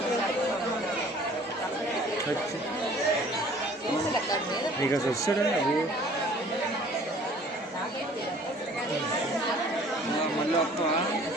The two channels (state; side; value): normal; both; correlation 0.52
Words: నీకు అసలు వస్తాడా అవి మళ్ళీ వస్తావా?